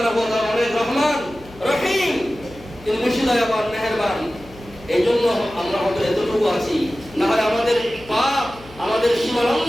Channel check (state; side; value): noise; left; hum, 21 dB below the sound